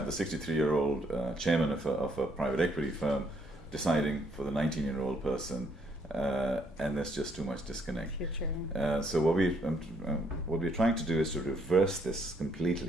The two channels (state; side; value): normal; both; correlation 0.69